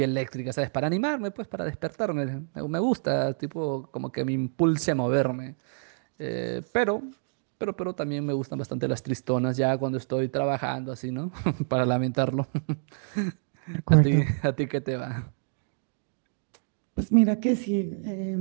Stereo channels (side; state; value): left; silent; digital silence